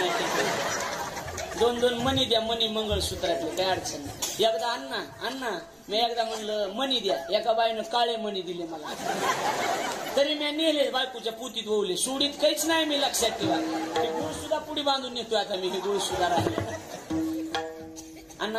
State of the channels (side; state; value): both; identical; correlation 1.00